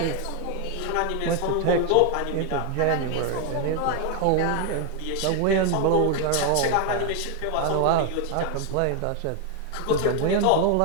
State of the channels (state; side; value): different; both; correlation 0.01